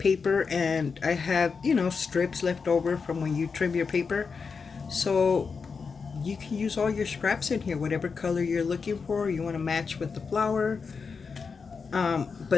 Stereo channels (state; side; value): quieter; right; 5.3 dB